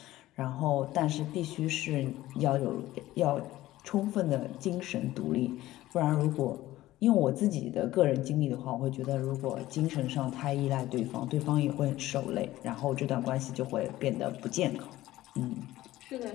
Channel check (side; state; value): right; quieter; 15.9 dB